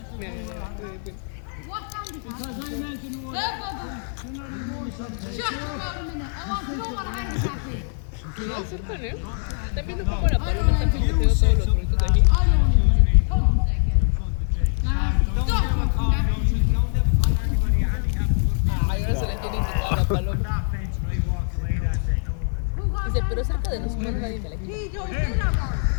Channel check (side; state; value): right; silent; 63 dB below the other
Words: Mira, no acercan, ¿eh? Están viendo cómo la paloma está picoteando todos los doritos de aquí. Ay, ahora se le quiere quitar a la paloma. Dice, pero cerca de nosotros nadie me la quita.